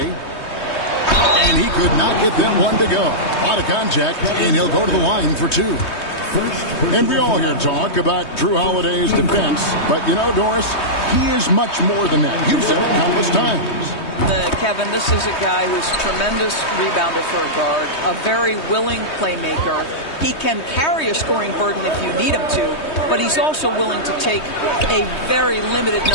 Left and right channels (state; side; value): late; right; 3.2 ms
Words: And he could not get that one to go. A lot of contact, and he'll go to the line for two. And we all hear talk about Jrue Holiday's defense. But, you know, Doris, he is much more than that. You've said it countless times. Kevin, this is a guy who's a tremendous rebounder for a guard, a very willing playmaker. He can carry a scoring burden if you need him to, but he's also willing to take a very limited